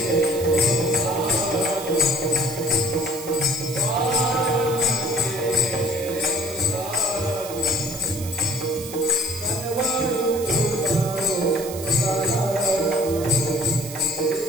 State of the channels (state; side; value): noise; right; hiss, 12 dB below the sound